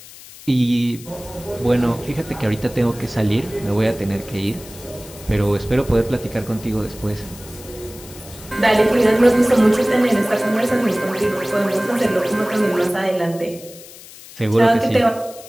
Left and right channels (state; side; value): noise; left; hiss, 18 dB below the sound